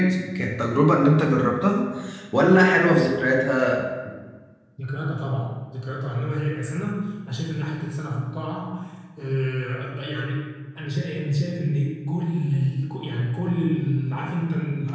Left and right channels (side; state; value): both; identical; correlation 1.00